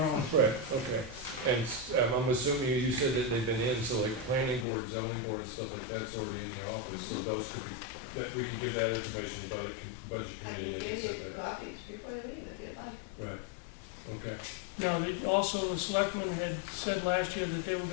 on. right, okay. And I'm assuming you said that they've been in, so like planning board, zoning board, stuff like that's already in the office, so those could be, that we could give that information to the budget I committee can and they can give set you that up. copies before you leave if you'd like. Right, okay. Now, also the selectmen had said last year that they were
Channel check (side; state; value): right; drops out; at 4.7 s